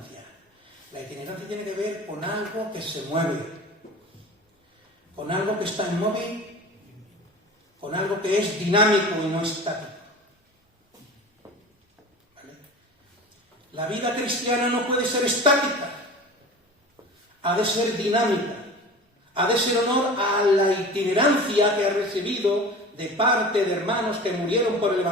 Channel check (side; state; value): both; normal; correlation 0.37